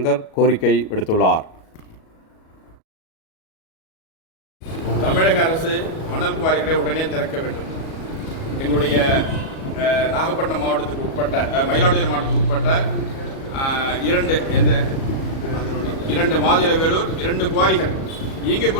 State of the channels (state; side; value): late; right; 37 ms